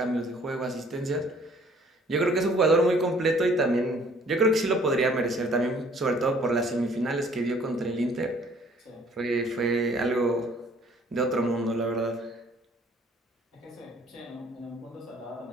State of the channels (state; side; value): normal; both; correlation 0.58